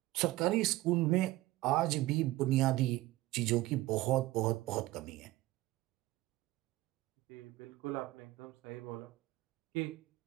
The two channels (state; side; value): quieter; left; 17.7 dB